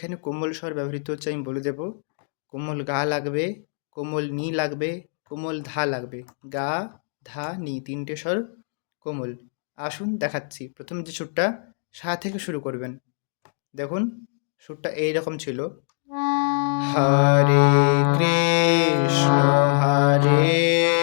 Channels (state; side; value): silent; right; digital silence